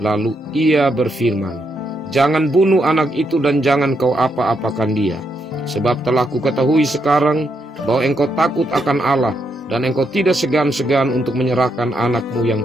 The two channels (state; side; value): normal; both; correlation 0.79